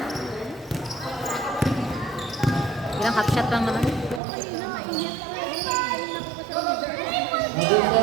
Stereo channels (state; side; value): drops out; left; at 4.2 s